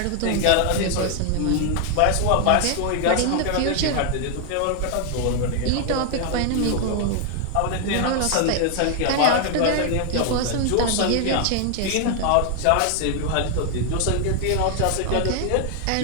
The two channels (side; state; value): both; different; correlation 0.00